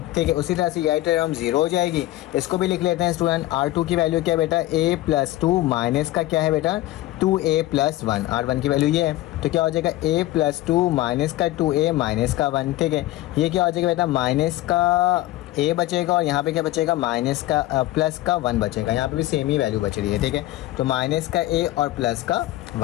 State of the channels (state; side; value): quieter; right; 16.5 dB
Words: ठीक है। उसी तरह से यही टर्म 0 हो जाएगी। इसको भी लिख लेते हैं स्टूडेंट, R2 की वैल्यू क्या है बेटा, a + 2 माइनस का क्या है बेटा 2a + 1, R1 की वैल्यू ये है। तो क्या हो जाएगा a + 2 माइनस का 2a माइनस का 1, ठीक है। ये क्या हो जाएगा बेटा माइनस का a बचेगा और यहाँ पे क्या बचेगा माइनस का प्लस का 1 बचेगा। यहाँ पे भी सेम ही वैल्यू बच रही है, ठीक है। तो माइनस का a और प्लस का